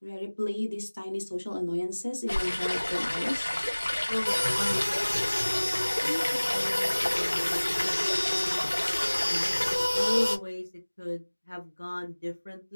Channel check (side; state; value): both; inverted; correlation -1.00